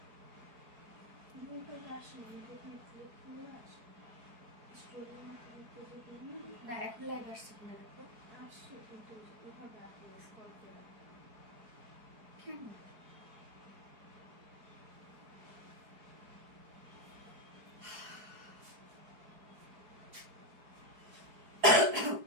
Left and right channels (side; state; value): left; late; 4.7 ms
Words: না এখন লাইভ আসছে কিনা দেখো আসছে কিন্তু ওভাবে আসলে স্ক্রল করে কেন